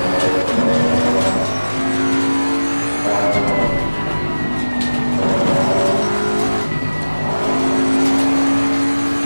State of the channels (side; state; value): both; inverted; correlation -1.00